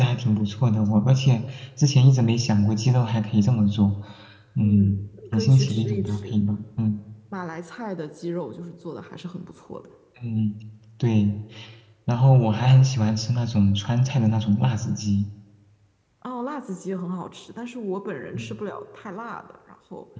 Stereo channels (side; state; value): both; identical; correlation 1.00